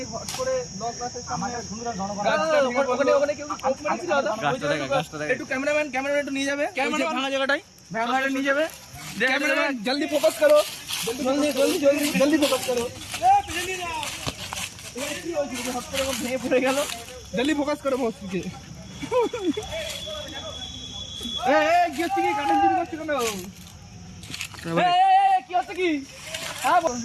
হট করে লক আছে সামনে। ওখানে কেউ কোপ মেরেছিল দাদা? একটু ক্যামেরাম্যান একটু নিয়ে যাবে ভাঙা জায়গাটাই, ভাঙাটা নিয়ে যাবে। ক্যামেরাম্যান জলদি ফোকাস করো, জলদি ফোকাস করো। হট করে ভেঙে পড়ে গেল। জলদি ফোকাস করো মস্তিকে। কি হচ্ছে কি? কাঠের চুরি করছে কেন? কি হচ্ছে কি?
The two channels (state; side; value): identical; both; correlation 1.00